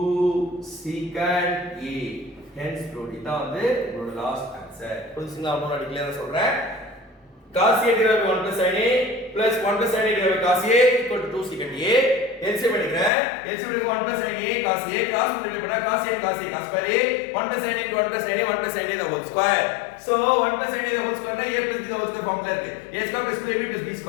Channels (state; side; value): drops out; right; at 13.1 s